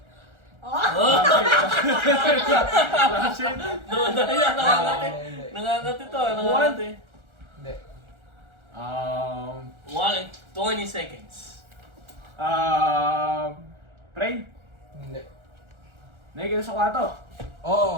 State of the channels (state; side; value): late; left; 1.4 ms